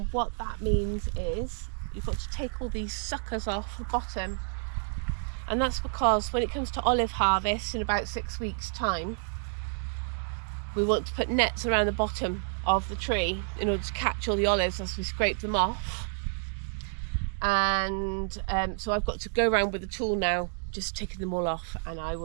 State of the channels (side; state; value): left; silent; 58 dB below the other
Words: what that means is you've got to take all these suckers off the bottom, and that's because when it comes to olive harvest in about 6 weeks time, we want to put nets around the bottom of the tree in order to catch all the olives as we scrape them off. And so I've got to go around with a tool now, just taking them all off, and I